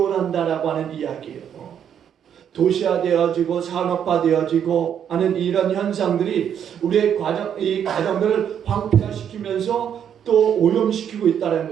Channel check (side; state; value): left; quieter; 8.8 dB